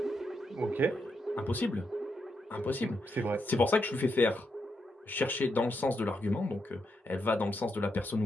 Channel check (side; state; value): both; normal; correlation 0.82